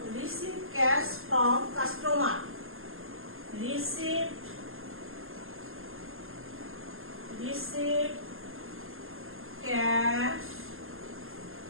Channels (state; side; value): late; left; 0.61 ms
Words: Receive cash from customer. Receive cash